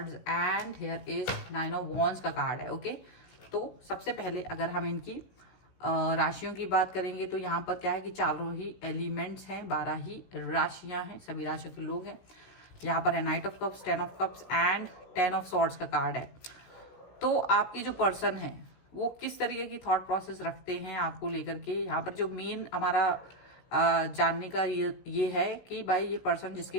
and here is 9 of wands का कार्ड है। ओके, तो सबसे पहले अगर हम इनकी राशियों की बात करेंगे तो यहाँ पर क्या है कि चारों ही एलिमेंट्स हैं, 12 ही राशियां हैं, सभी राशियों के लोग हैं। यहाँ पर है night of cups, 10 of cups and 10 of swords का कार्ड है। तो आपकी जो पर्सन है वो किस तरीके की थॉट प्रोसेस रखते हैं आपको लेकर के, यहाँ पर जो मेन हमारा जानने का ये है कि भाई ये पर्सन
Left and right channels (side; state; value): right; late; 16 ms